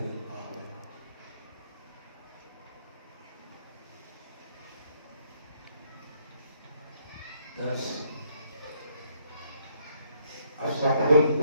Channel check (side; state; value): both; inverted; correlation -0.69